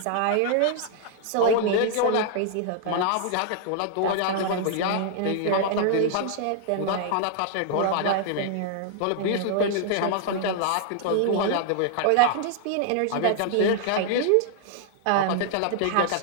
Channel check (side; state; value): both; different; correlation -0.01